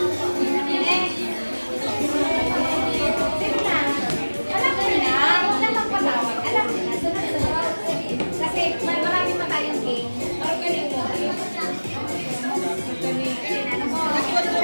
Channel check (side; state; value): both; inverted; correlation -1.00